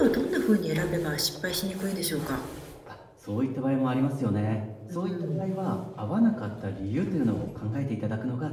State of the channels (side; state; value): both; identical; correlation 1.00